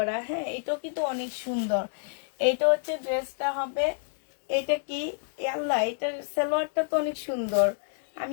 হ্যাঁ, এটাও কিন্তু অনেক সুন্দর। এইটা হচ্ছে ড্রেসটা হবে, এটা কি এ আল্লাহ, এটার সালোয়ারটা তো অনেক সুন্দর।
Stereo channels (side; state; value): right; silent; digital silence